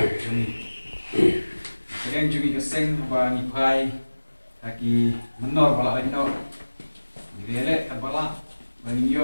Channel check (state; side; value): inverted; both; correlation -1.00